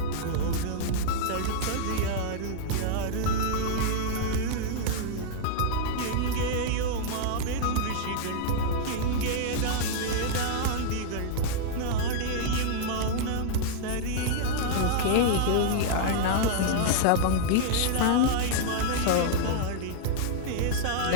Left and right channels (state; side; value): different; both; correlation -0.01